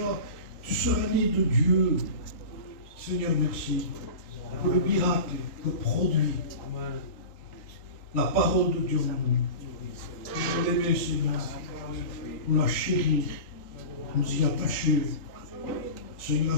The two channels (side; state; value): right; late; 3.9 ms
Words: Tu seras né de Dieu. Seigneur, merci pour le miracle que produit la parole de Dieu en nous. Nous l'aimer, Seigneur, nous la chérir, nous y attacher. Seigneur,